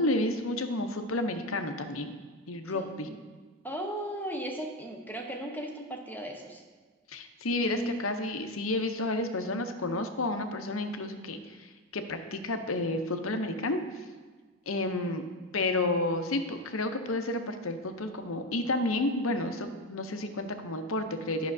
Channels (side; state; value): both; normal; correlation 0.15